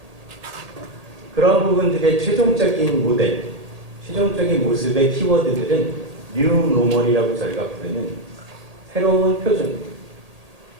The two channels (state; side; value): late; left; 1.8 ms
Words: 그런 부분들의 최종적인 모델, 최종적인 모습의 키워드들은 뉴 노멀이라고 저희가 부르는 새로운 표준,